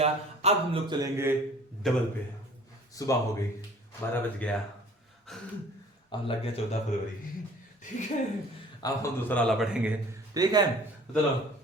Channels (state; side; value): normal; both; correlation 0.49